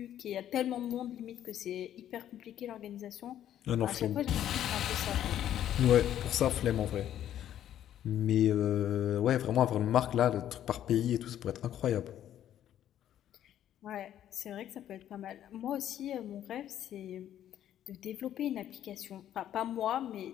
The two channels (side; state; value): right; quieter; 11.2 dB